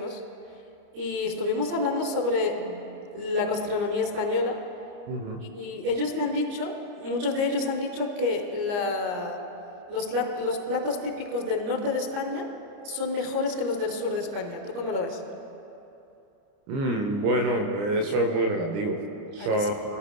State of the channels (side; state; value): left; late; 29 ms